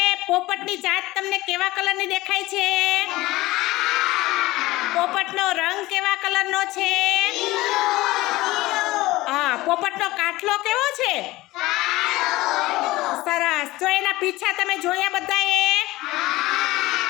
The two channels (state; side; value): quieter; right; 18.7 dB